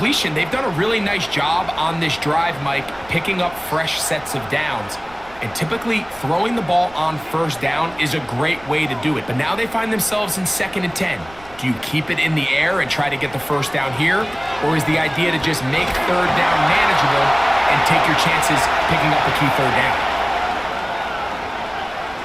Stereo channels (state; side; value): noise; right; rumble, 23 dB below the sound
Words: they've done a really nice job on this drive, Mike, picking up fresh sets of downs. And typically, throwing the ball on 1st down is a great way to do it. But now they find themselves in 2nd and 10. Do you keep it in the air and try to get the 1st down here? Or is the idea to just make 3rd down manageable and take your chances picking up a key 3rd down?